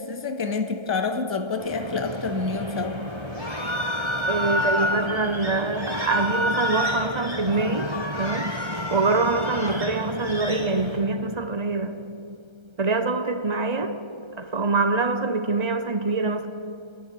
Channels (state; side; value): late; left; 1.3 ms